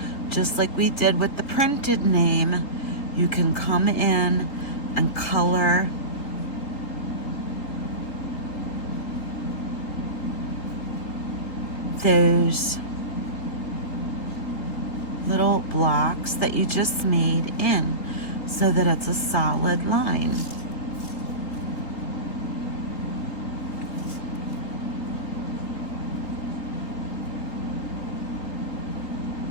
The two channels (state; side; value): late; right; 3.8 ms